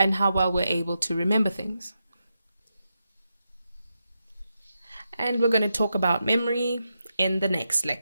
how well we're able to remember things. And we're going to talk about memory in the next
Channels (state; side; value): inverted; both; correlation -0.86